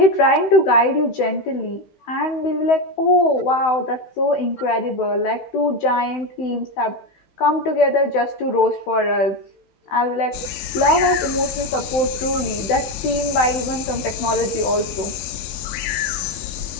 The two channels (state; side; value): late; right; 16 ms